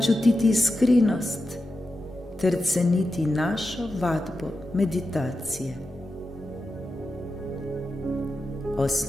čutiti iskrenost ter ceniti našo vadbo meditacije.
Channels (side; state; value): both; normal; correlation 0.90